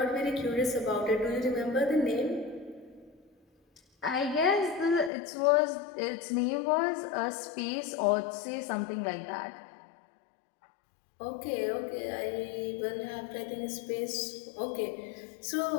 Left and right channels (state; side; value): drops out; right; at 5.1 s